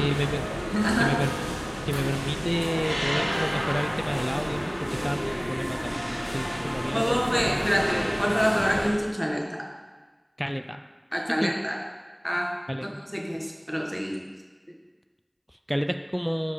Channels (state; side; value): identical; both; correlation 1.00